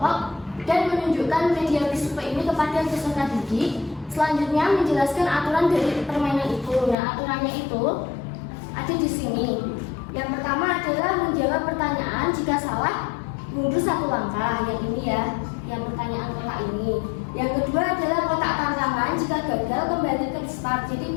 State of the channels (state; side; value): drops out; right; at 7.0 s